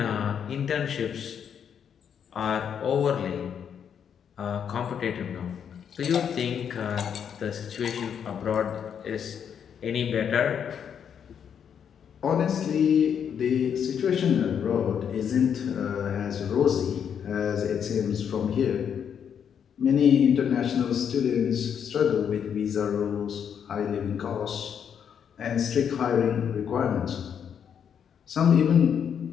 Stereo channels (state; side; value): quieter; right; 8.0 dB